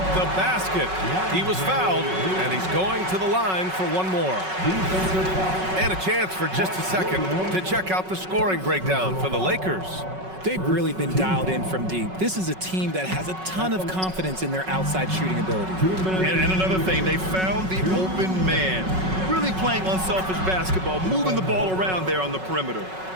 the basket. He was fouled, and he's going to the line for one more. And a chance for just a second to check out the scoring breakdown for the Lakers. They've really been dialed in from deep. This is a team that has a ton of confidence in their outside shooting ability. And another thing, they found the open man. Really playing unselfish basketball, moving the ball around there on the perimeter.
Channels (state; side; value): late; left; 5.4 ms